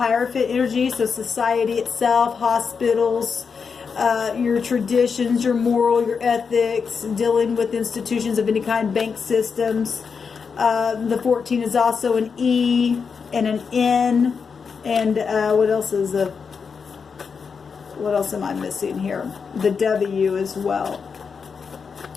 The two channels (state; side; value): quieter; right; 5.8 dB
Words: energy, so society itself, hospitals, your traditions, your moral, your ethics, dealing with institutions of any kind, bank systems. The 14 is also an E and an N, and what else am I missing here? The W as well.